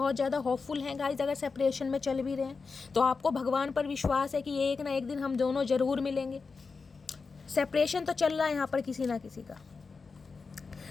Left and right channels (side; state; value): right; quieter; 4.6 dB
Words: ज़्यादा होपफुल हैं गाइस, अगर सेपरेशन में चल भी रहे हैं तो आपको भगवान पर विश्वास है कि एक ना एक दिन हम दोनों जरूर मिलेंगे। सेपरेशन तो चल रहा है यहाँ पर किसी ना किसी का।